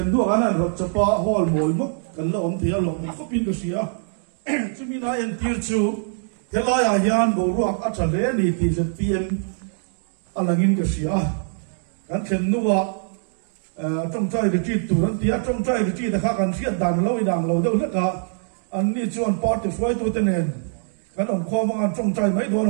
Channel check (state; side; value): silent; left; digital silence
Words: đua anh ăn rồi chapa hall mồi mốc anh là ông thì là ông có pin cái gì á chứ mình nói anh tiêu chú thế là à hiền bộ ruột ở trên đấy này thì sẽ PM anh là nghìn cái gì á anh xem đua trong trái cái chi tủ anh tiếc trong trái cái chi là khác anh siết đàn lâu đâu hết cả anh đi chọn part thì phải tôi tên này anh ông khoa mà anh trong trái mấy đứa